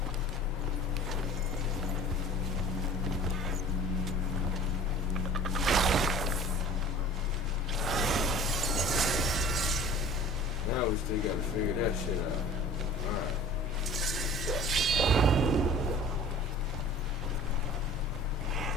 Now we still gotta figure that shit out. Alright.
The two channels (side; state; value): both; normal; correlation 0.44